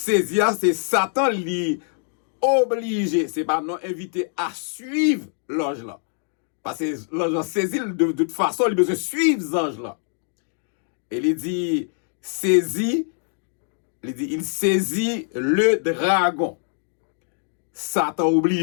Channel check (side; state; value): right; silent; 63 dB below the other